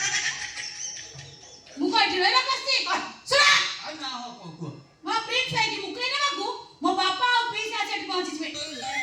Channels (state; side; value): identical; both; correlation 1.00